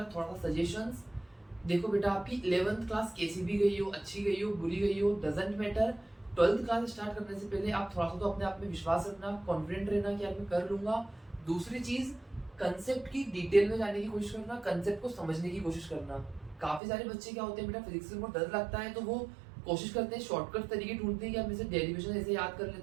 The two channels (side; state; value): left; drops out; at 16.8 s